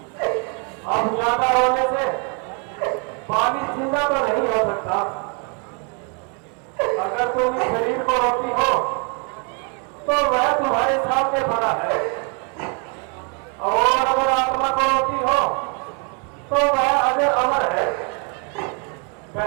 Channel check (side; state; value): left; quieter; 37.1 dB